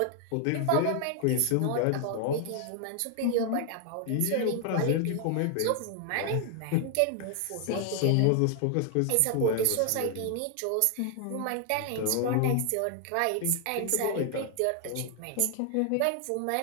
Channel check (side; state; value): both; different; correlation 0.00